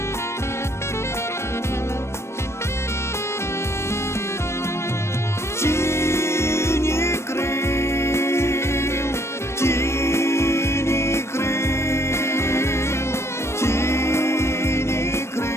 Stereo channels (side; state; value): right; late; 0.13 ms